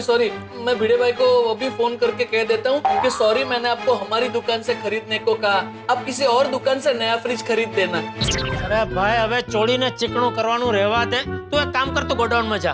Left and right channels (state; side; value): identical; both; correlation 1.00